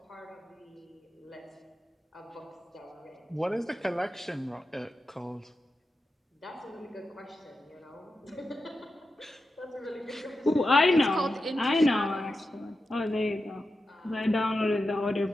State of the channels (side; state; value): both; normal; correlation 0.90